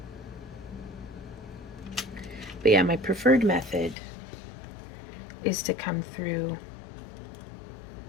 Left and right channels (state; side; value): drops out; right; at 4.0 s